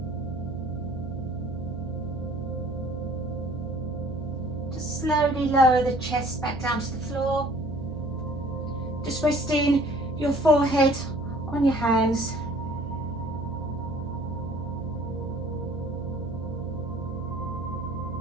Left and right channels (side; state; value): right; noise; hum, 10 dB below the sound